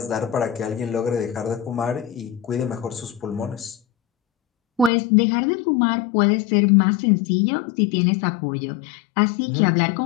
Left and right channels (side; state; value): right; drops out; at 4.9 s